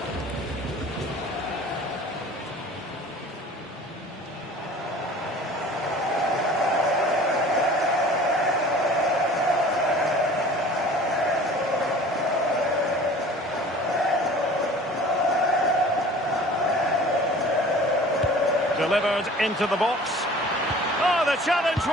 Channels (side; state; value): both; normal; correlation 0.45